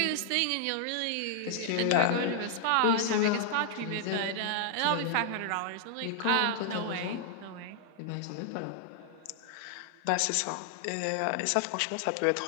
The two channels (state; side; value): different; both; correlation -0.01